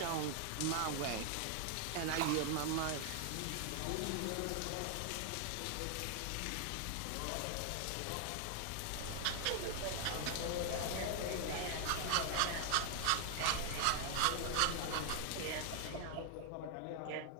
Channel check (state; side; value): different; both; correlation 0.00